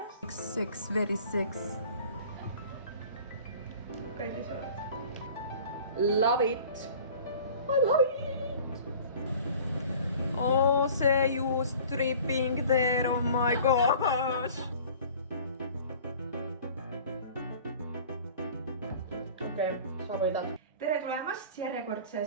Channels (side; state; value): both; inverted; correlation -0.46